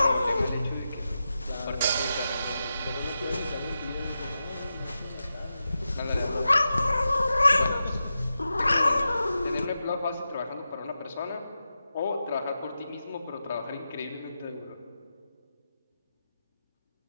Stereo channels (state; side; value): inverted; both; correlation -0.90